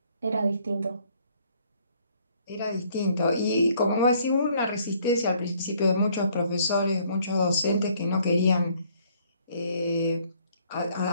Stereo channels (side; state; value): both; inverted; correlation -0.63